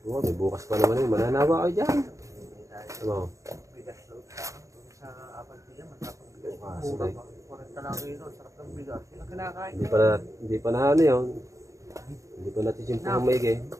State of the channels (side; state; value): left; late; 0.15 ms